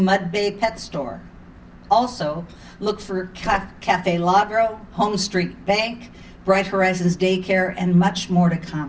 Bay pet store. Also, look for Cafe Ladro, Home Street Bank, Bright Horizons Daycare, and much more to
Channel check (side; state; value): both; identical; correlation 1.00